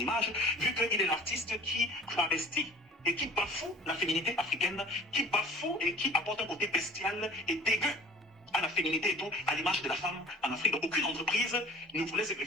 vu qu'il est l'artiste qui travestit et qui bafoue la féminité africaine, qui bafoue et qui apporte un côté bestial et dégueu à la féminité et tout, à l'image de la femme en Afrique. Donc aucune entreprise ne voulait se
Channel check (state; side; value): normal; both; correlation 0.46